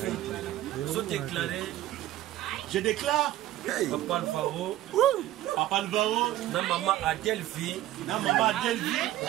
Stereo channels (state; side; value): quieter; left; 14.5 dB